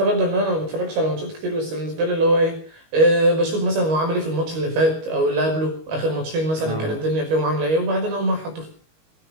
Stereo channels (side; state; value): left; late; 19 ms